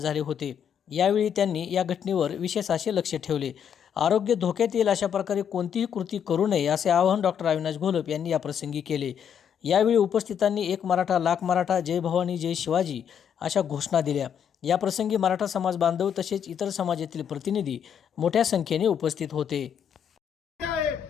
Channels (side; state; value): right; quieter; 8.3 dB